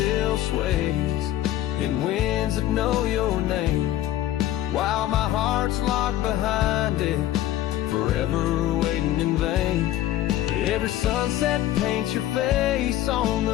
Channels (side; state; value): right; quieter; 13.6 dB